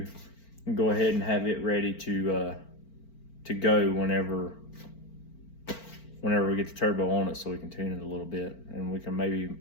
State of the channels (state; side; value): late; right; 4.4 ms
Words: and go ahead and have it ready to go whenever we get the turbo on it, so we can tune it a little bit, and we can